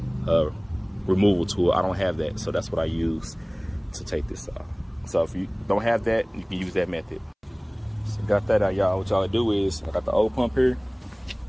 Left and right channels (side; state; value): both; identical; correlation 1.00